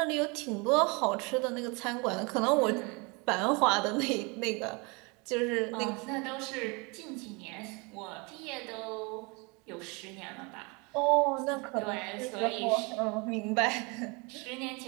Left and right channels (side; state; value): left; quieter; 29.4 dB